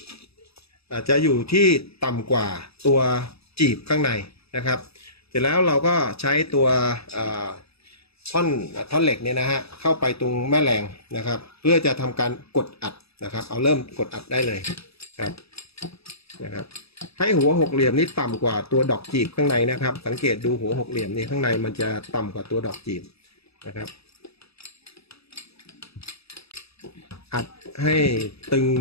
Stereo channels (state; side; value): late; right; 0.78 ms